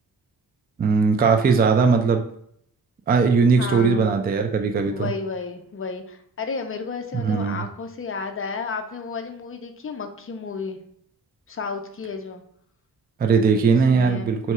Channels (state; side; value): quieter; left; 4.0 dB